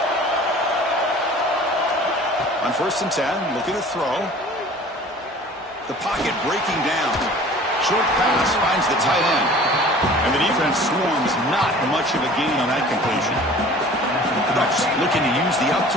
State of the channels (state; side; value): normal; both; correlation 0.46